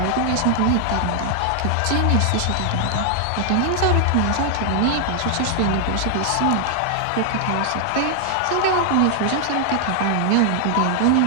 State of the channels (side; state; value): both; different; correlation 0.00